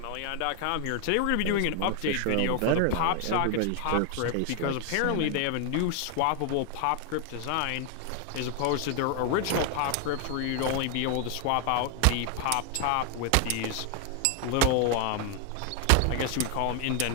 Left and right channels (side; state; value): both; different; correlation 0.00